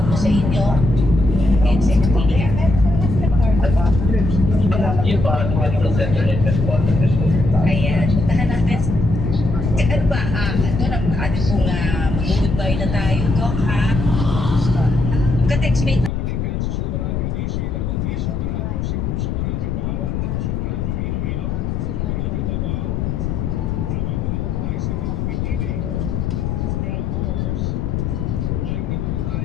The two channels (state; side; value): noise; left; rumble, 1 dB below the sound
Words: po sa inyo. And secretary. Ayan, puntahan natin. Ano ba? Ito na, atin pong mag-goodbye na tayo, Doc, ha? Ka-textmate.